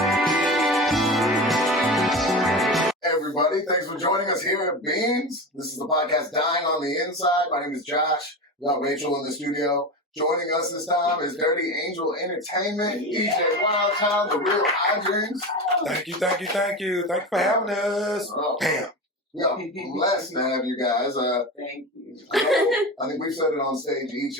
Everybody, thanks for joining us here at Beans. This is the podcast Dying on the Inside. My name is Josh. We got Rachel in the studio. Joining us this time is Dirty Angel Entertainment, DJ Wildchild, the real Hyjinx. Thank you. Thank you for having us. Bam. Yeah, blessed to have you guys. Thank you. I think we've said it on stage each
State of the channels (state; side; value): normal; both; correlation 0.25